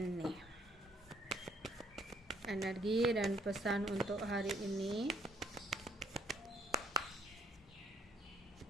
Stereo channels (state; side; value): normal; both; correlation 0.66